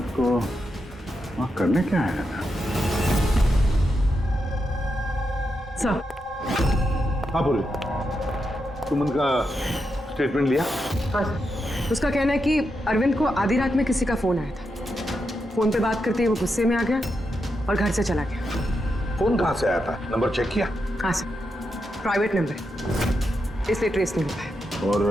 को वहां करने क्या आया था? सर। हाँ बोले, तुम उनका स्टेटमेंट लिया? हाँ सर। उसका कहना है कि अरविंद को आधी रात में किसी का फोन आया था। फोन पे बात करते ही वो गुस्से में आ गया और घर से चला गया। फोन कहाँ से आया था? नंबर चेक किया? हाँ सर, प्राइवेट नंबर है, इसलिए ट्रेस नहीं हो पाया।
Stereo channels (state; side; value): normal; both; correlation 0.85